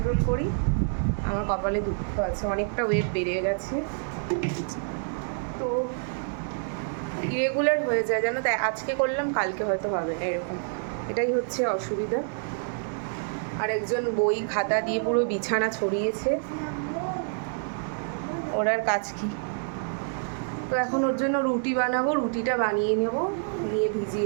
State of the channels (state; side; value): silent; left; digital silence